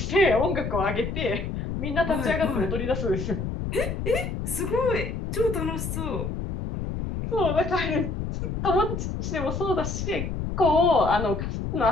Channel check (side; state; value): left; noise; rumble, 4 dB below the sound